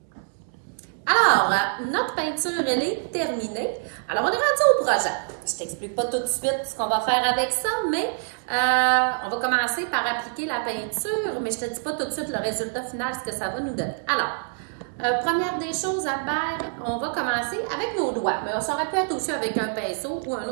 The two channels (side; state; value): left; silent; 55 dB below the other